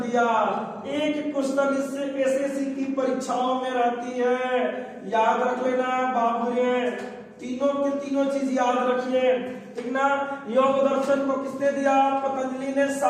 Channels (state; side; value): identical; both; correlation 1.00